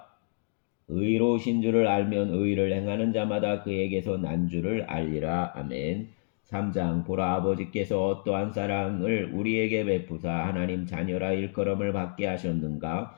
의로우신 줄을 알면 의를 행하는 자마다 그에게서 난 줄을 알리라. 아멘. 3장 보라 아버지께서 어떠한 사랑을 우리에게 베푸사 하나님 자녀라 일컬음을 받게 하셨는가.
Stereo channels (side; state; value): right; silent; digital silence